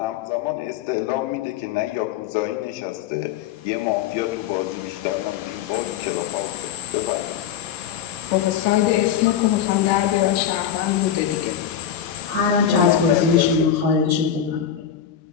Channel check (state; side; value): quieter; right; 9.1 dB